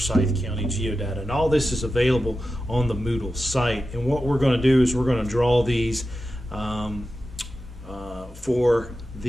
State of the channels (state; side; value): normal; both; correlation 0.92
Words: County Geodata. And all this is available on the Moodle site. And what we're going to do is we're going to draw these for